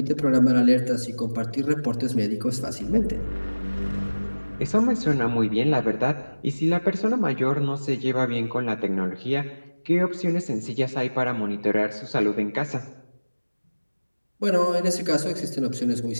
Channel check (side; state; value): both; inverted; correlation -1.00